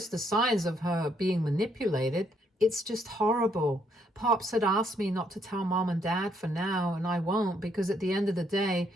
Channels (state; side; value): normal; both; correlation 0.72